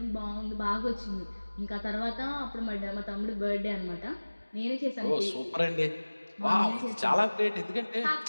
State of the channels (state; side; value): inverted; both; correlation -1.00